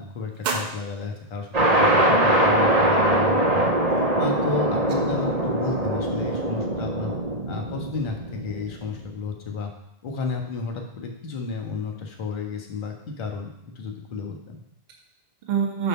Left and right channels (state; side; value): late; left; 2.1 ms